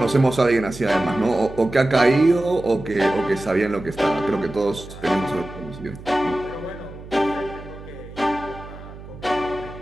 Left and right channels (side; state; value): right; noise; hum, 15 dB below the sound